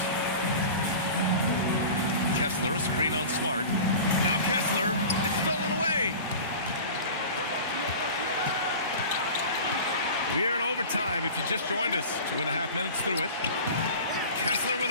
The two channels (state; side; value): inverted; both; correlation -0.36